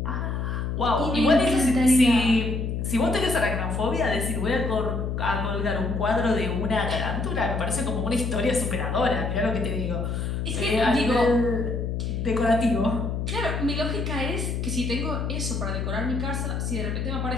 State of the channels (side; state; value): left; noise; hum, 2 dB below the sound